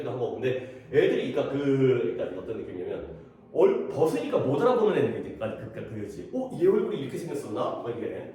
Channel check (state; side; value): identical; both; correlation 1.00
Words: 하고. 근데 애들이 그러니까 어떤 느낌이냐면 벗으니까 못 알아보는 애들까지 그거지. 얘 얼굴이 이렇게 생겼었나? 뭐